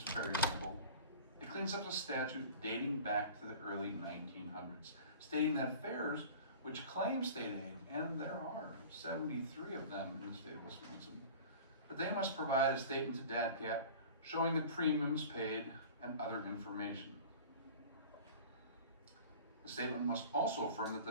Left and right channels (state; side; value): inverted; both; correlation -0.40